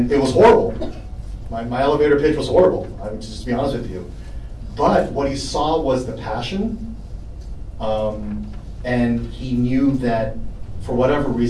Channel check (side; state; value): both; identical; correlation 1.00